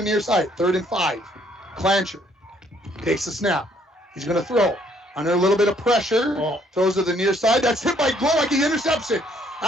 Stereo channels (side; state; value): both; normal; correlation 0.65